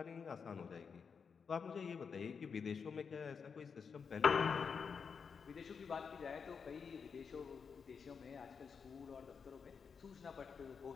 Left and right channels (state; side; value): quieter; right; 6.0 dB